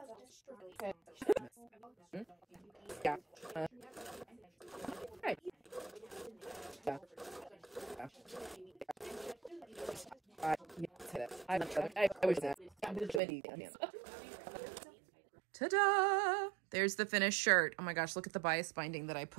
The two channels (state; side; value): drops out; left; at 13.2 s